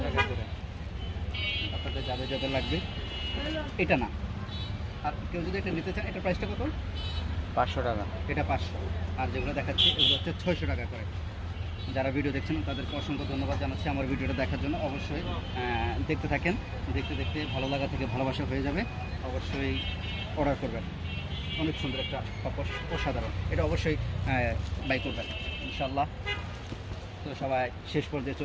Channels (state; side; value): identical; both; correlation 1.00